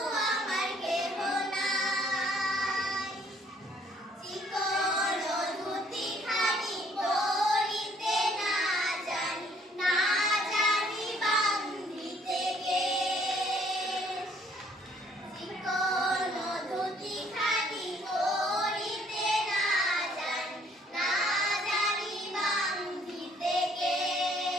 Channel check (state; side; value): normal; both; correlation 0.63